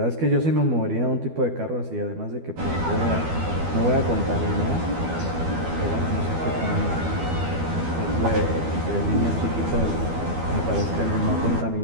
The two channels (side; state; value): left; late; 12 ms